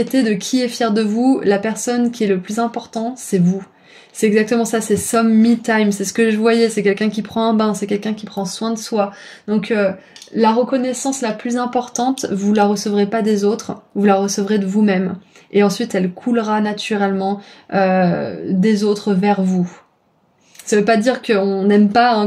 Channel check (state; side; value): identical; both; correlation 1.00